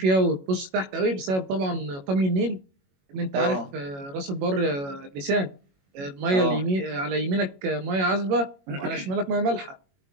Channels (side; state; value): left; late; 21 ms